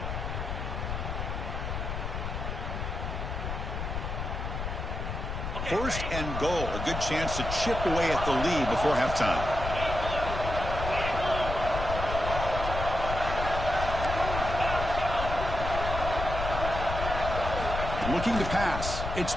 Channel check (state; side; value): noise; left; rumble, 4 dB below the sound